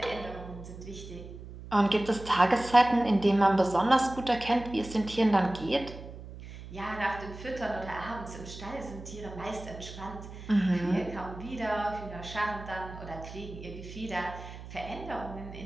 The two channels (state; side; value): noise; right; hum, 13 dB below the sound